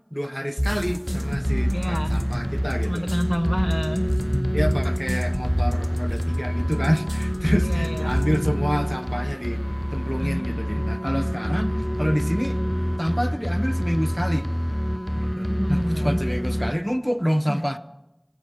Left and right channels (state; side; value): identical; both; correlation 1.00